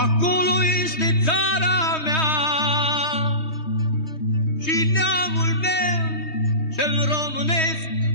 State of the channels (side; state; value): right; late; 3.2 ms